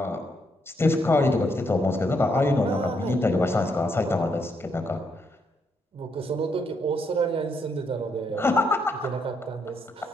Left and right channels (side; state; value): both; normal; correlation 0.76